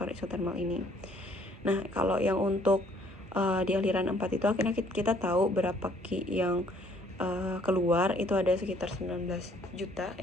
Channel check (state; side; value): normal; both; correlation 0.62